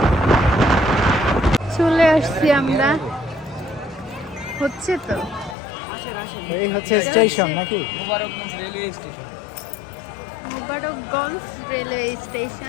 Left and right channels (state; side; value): drops out; right; at 5.6 s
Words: আমরা, হচ্ছে তো এই হচ্ছে স্টেশন নাকি? Mobarakganj railway